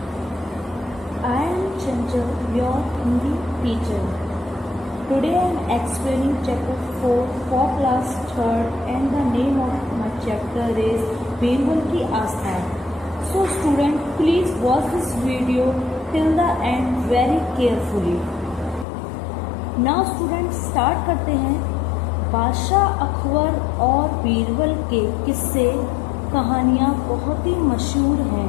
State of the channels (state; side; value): drops out; right; at 18.9 s